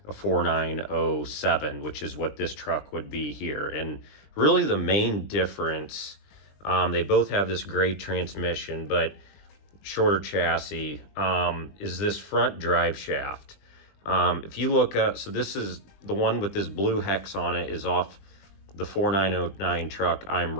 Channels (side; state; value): right; late; 20 ms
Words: a 4907, which is what this truck would be here. And really the main difference, they both have this great transmission, but shorter chassis, is this front drive shaft. If you look up, so this is the one with this blue hex on it, is off the 4909 truck I'm